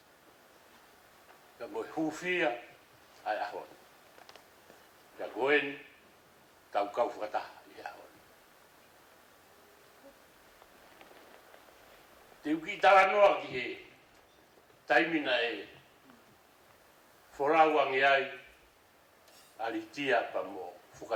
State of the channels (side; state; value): both; identical; correlation 1.00